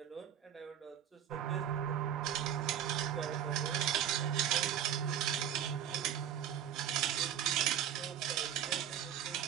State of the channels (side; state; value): left; quieter; 9.9 dB